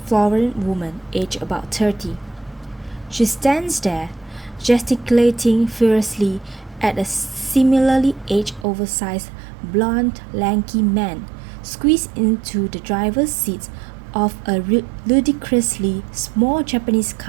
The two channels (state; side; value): drops out; left; at 8.7 s